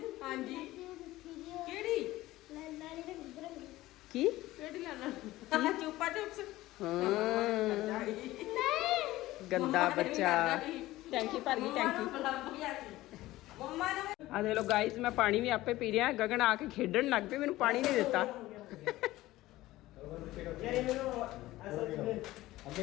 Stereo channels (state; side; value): quieter; right; 17.0 dB